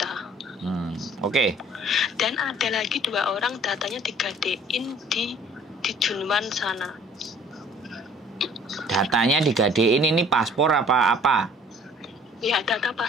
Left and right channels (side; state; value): both; normal; correlation 0.54